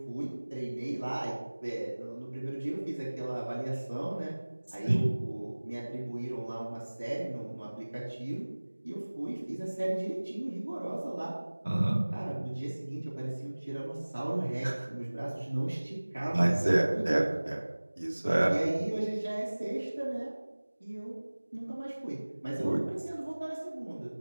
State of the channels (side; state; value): both; inverted; correlation -1.00